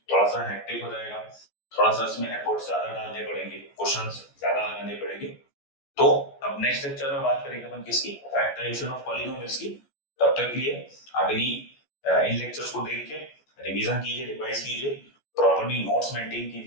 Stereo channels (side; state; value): right; late; 14 ms